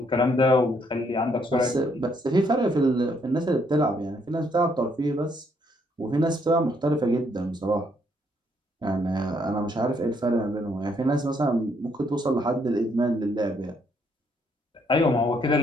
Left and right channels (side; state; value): both; normal; correlation 0.71